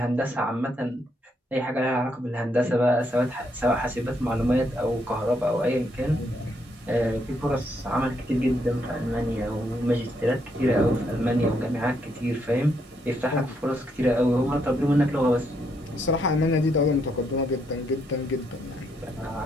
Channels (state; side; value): normal; both; correlation 0.76